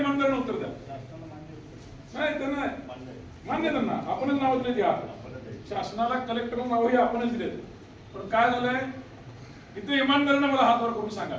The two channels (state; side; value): identical; both; correlation 1.00